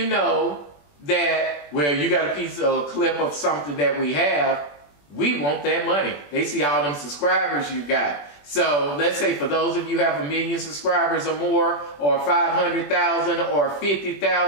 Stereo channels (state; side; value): late; right; 21 ms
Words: know that, well, you got a piece of a clip of something that we have, we want that money. They see all them subscribers you got. So let's say for those of you who have 1 million subscribers or more, or 500,000 or